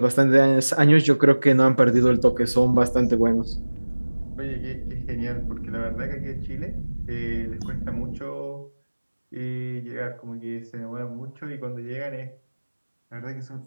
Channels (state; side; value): inverted; both; correlation -1.00